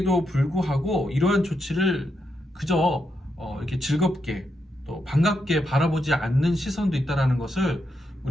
불구하고 이러한 조치를 그저 이렇게 즐겁게 또 반갑게 바라보지 않는 시선도 있다는 것을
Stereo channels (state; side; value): normal; both; correlation 0.82